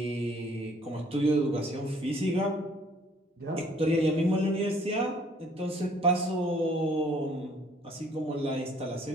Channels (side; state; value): both; normal; correlation 0.60